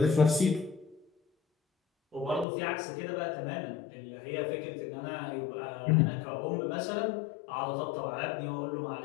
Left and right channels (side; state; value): right; drops out; at 2.5 s